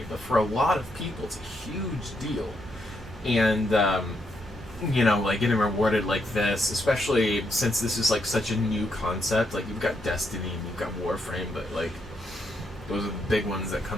but for a lot of people, it's a huge deal. And, getting rewarded like this, especially since this is, such a new concept. You've got Destiny and you've got Warframe, but, those are the big ones that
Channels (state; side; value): normal; both; correlation 0.78